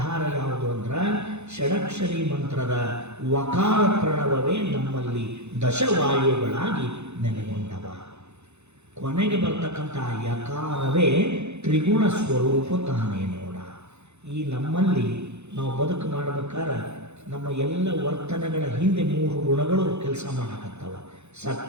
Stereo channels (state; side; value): late; left; 0.81 ms